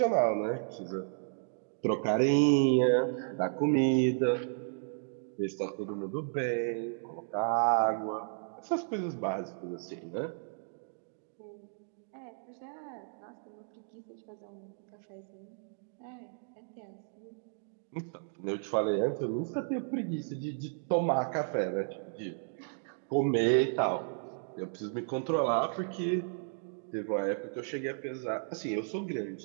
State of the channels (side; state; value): left; silent; digital silence